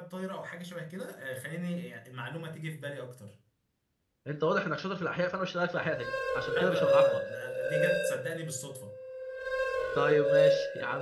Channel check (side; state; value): both; identical; correlation 1.00